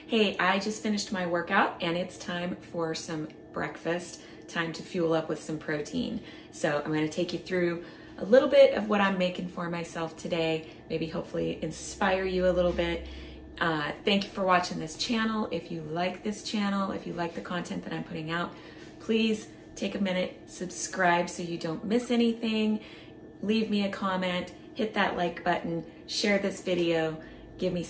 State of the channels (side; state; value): both; identical; correlation 1.00